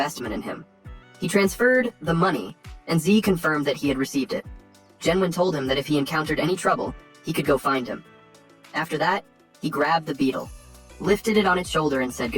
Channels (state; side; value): identical; both; correlation 1.00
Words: in him. He transferred the money, and Z confirmed that he had received it. Genwen told him that if he encountered any trouble, he could go find him. After that, he grabbed the beetle, lifted it on its shoulder, and said